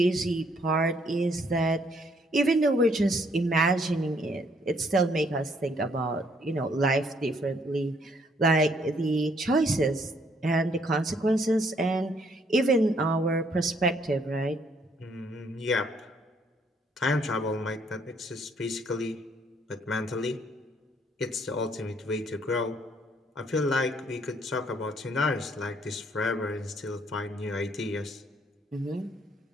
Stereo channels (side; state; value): both; normal; correlation 0.67